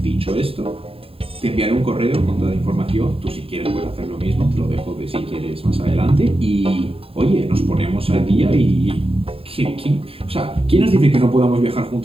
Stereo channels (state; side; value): late; left; 0.27 ms